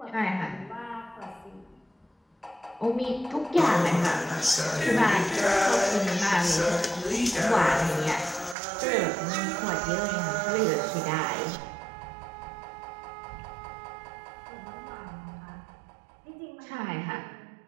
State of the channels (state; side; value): drops out; left; at 8.6 s